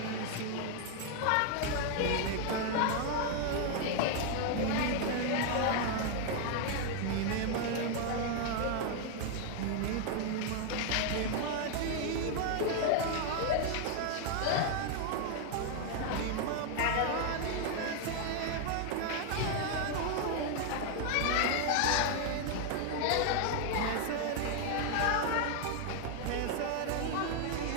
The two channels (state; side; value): different; both; correlation 0.00